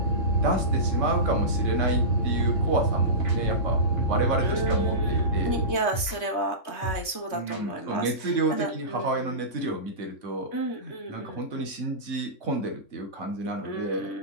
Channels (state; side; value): late; right; 3.2 ms